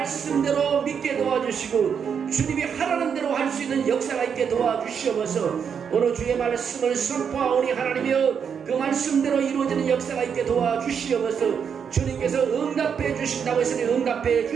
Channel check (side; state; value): left; quieter; 7.1 dB